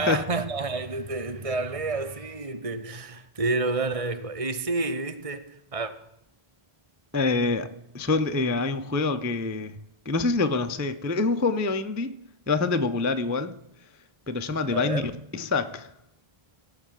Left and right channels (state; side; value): late; left; 1.6 ms